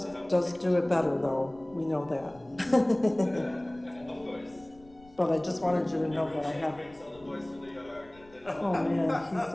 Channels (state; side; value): noise; left; rumble, 26 dB below the sound